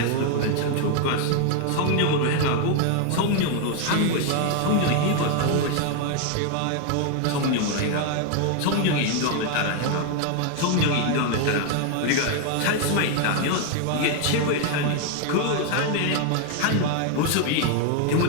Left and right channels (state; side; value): different; both; correlation 0.01